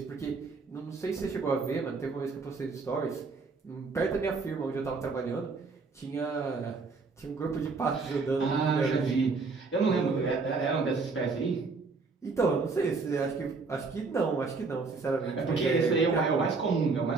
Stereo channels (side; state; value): left; quieter; 4.3 dB